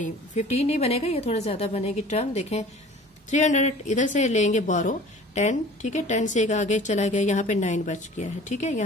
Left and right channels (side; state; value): both; normal; correlation 0.45